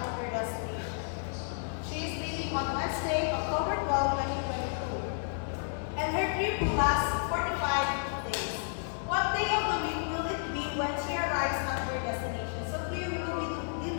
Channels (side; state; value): right; silent; 57 dB below the other